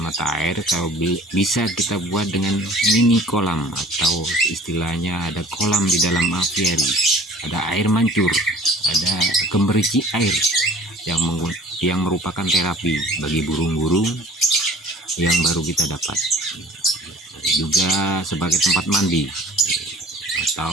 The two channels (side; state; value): both; normal; correlation 0.47